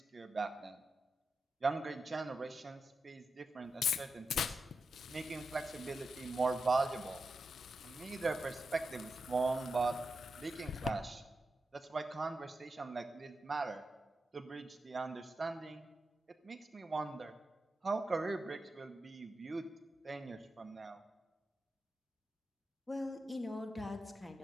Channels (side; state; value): both; normal; correlation 0.88